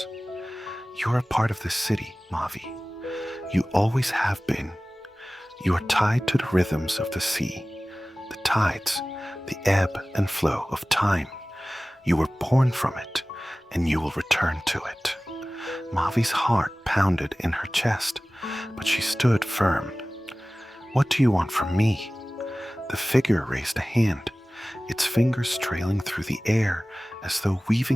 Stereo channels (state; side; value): normal; both; correlation 0.98